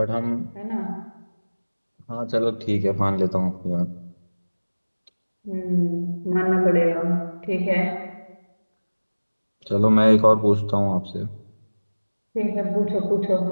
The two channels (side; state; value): both; inverted; correlation -1.00